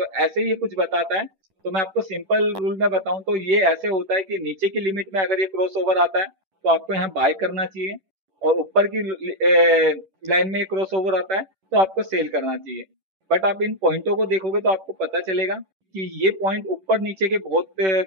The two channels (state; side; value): late; left; 10 ms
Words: ऐसे ही ये कुछ बताता है। तो मैं आपको सिंपल रूल में बताऊं तो ये ऐसे होता है कि नीचे की लिमिट में अगर ये क्रॉस ओवर आता है तो आपको यहाँ बाय करना चाहिए, और ऊपर की लाइन में क्रॉस ओवर आता है तो आपको सेल करना चाहिए। बट आप इन पॉइंटों को देखोगे तो आपको पता चलेगा कि ये पॉइंट ऊपर नीचे के बहुत